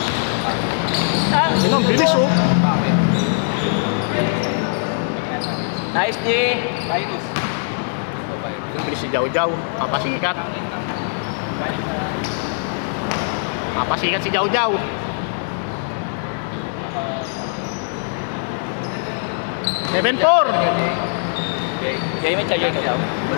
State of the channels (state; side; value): silent; right; digital silence